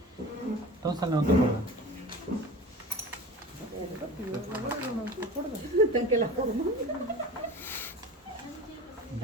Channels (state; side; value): normal; both; correlation 0.36